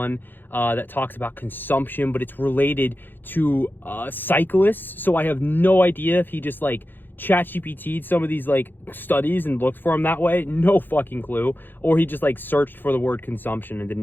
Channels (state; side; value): late; right; 0.093 ms